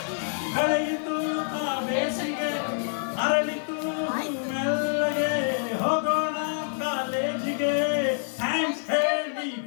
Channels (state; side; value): silent; right; digital silence